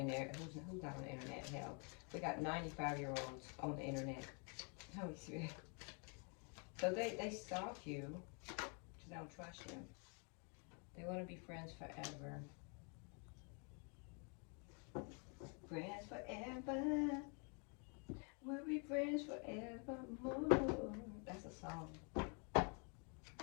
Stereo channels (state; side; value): quieter; right; 37.2 dB